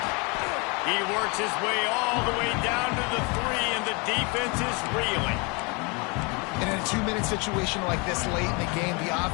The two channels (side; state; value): right; quieter; 30.5 dB